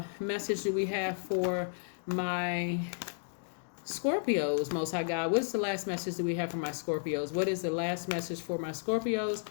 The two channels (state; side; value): silent; right; digital silence